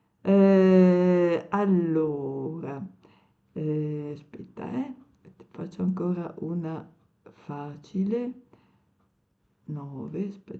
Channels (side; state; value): both; identical; correlation 1.00